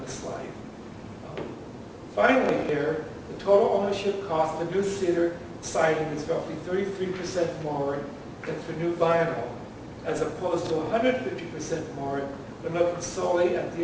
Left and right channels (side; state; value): both; identical; correlation 1.00